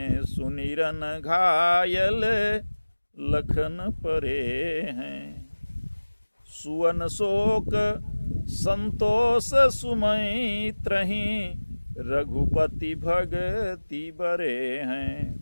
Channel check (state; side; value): inverted; both; correlation -1.00